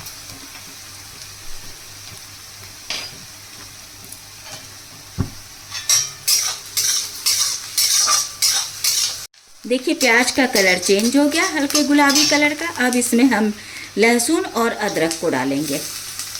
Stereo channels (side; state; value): both; identical; correlation 1.00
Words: देखिए प्याज का कलर चेंज हो गया, हल्के गुलाबी कलर का। अब इसमें हम लहसुन और अदरक को डालेंगे